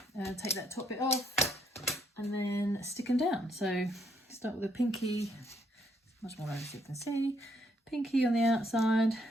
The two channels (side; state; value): both; normal; correlation 0.72